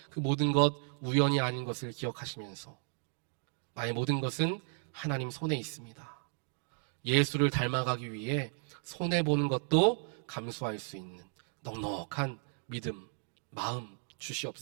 그 모든 것 우연이 아닌 것을 기억하시면서 나의 모든 것은 하나님 손에 있습니다. 예수를 닮아가기 위해 손해보는 것도 감수할 수 있는 넉넉한 믿음, 마음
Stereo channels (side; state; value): left; silent; 55 dB below the other